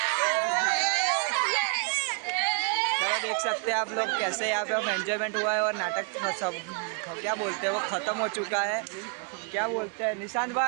तो देख सकते हैं आप लोग कैसे यहाँ पे हम एंजॉयमेंट हुआ है और नाटक सब क्या बोलते हैं वो खत्म हो चुका है। क्या बोलते हैं निशांत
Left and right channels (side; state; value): left; quieter; 36.5 dB